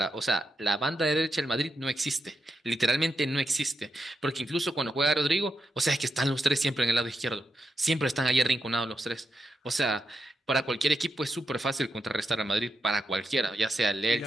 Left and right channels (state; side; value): normal; both; correlation 0.85